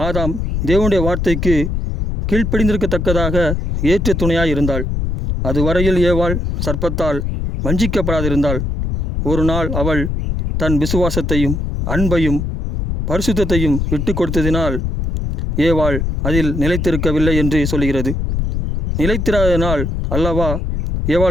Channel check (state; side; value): noise; left; rumble, 2 dB below the sound